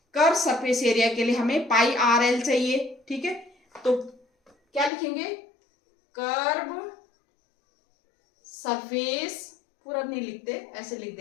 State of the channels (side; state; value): right; drops out; at 4.9 s